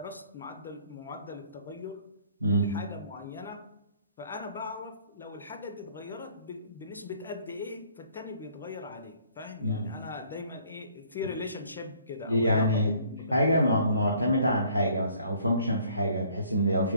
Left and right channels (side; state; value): both; inverted; correlation -0.59